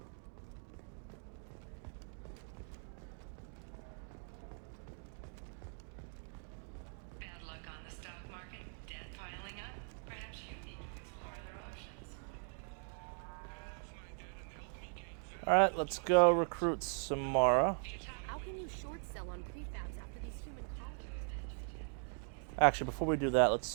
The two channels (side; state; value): left; silent; 51 dB below the other